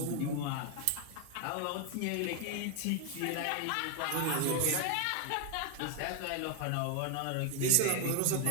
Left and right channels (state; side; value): different; both; correlation 0.00